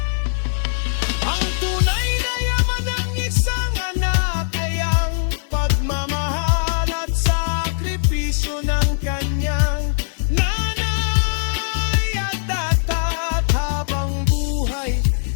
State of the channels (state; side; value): silent; right; digital silence